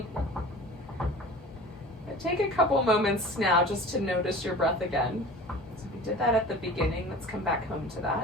But take a couple moments now just to notice your breath again. So we did that at the beginning. Let's come back home to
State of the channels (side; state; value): both; normal; correlation 0.40